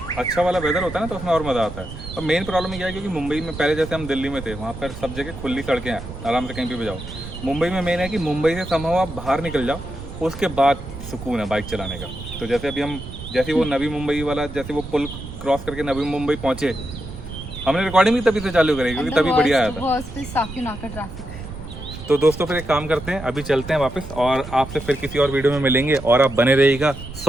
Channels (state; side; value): noise; right; rumble, 11 dB below the sound